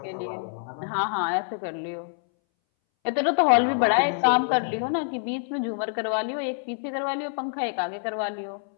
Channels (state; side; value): silent; right; 61 dB below the other